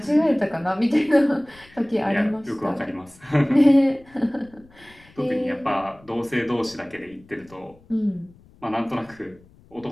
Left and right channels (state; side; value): noise; left; rumble, 27 dB below the sound